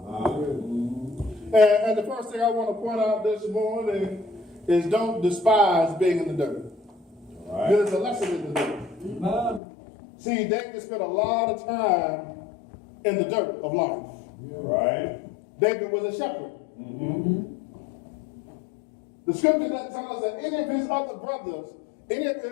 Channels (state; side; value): drops out; right; at 9.6 s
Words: And the first thing I want to point out this morning is don't despise being in the dirt. There's a lesson in the dirt. See, David spent a lot of time in the dirt of life. Right. David was a shepherd. The scripture doesn't tell us that any of his other brothers, any of